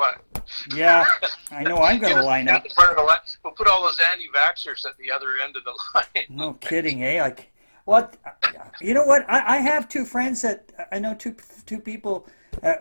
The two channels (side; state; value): both; inverted; correlation -1.00